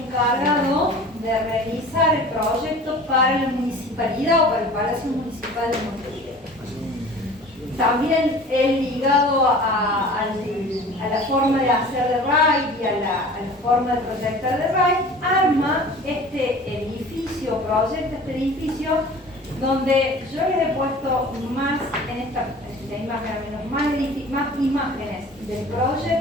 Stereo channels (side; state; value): both; normal; correlation 0.42